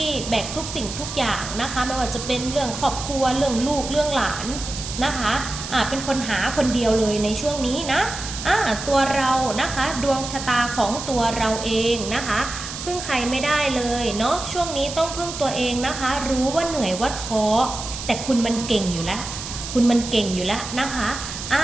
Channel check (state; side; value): noise; right; hiss, 8 dB below the sound